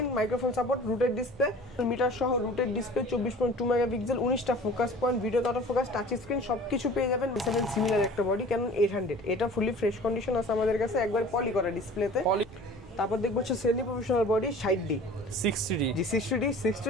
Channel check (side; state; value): both; normal; correlation 0.44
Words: microphone support, routed display, meter সহ রুটেড ডিসপ্লে, 24.2 মেগাপিক্সেল, 19টা focus point, video auto focus, touch screen সবকিছু পেয়ে যাবেন। 7 সিমিলার একটা বডি ক্যানন 800, এটা ফুলি ফ্রেশ কন্ডিশন আছে আমাদের কাছে, একবার পলি করা ডিসপ্লেতে। তারপর দেখবো হচ্ছে semi professional body 60D 60D। জি